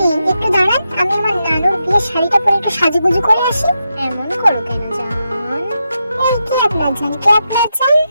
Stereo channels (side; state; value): both; inverted; correlation -0.86